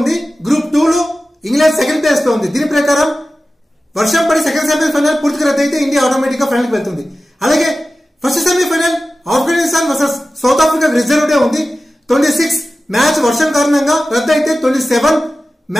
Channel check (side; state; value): both; normal; correlation 0.95